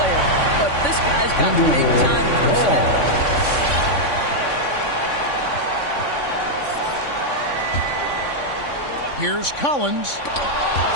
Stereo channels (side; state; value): right; late; 3.5 ms